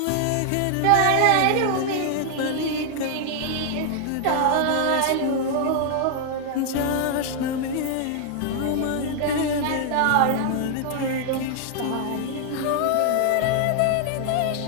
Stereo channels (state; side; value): different; both; correlation 0.00